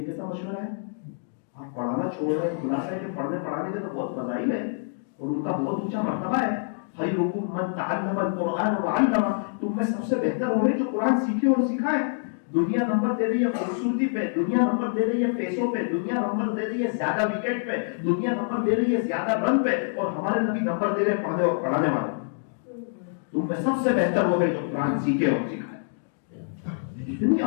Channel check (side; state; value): right; silent; digital silence